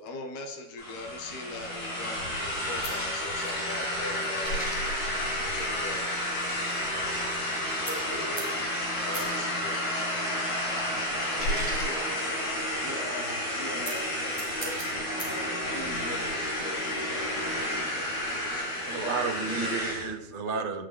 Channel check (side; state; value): right; late; 12 ms